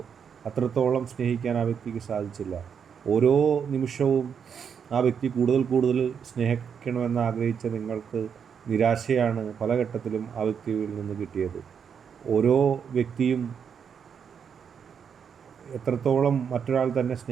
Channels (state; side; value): quieter; left; 7.2 dB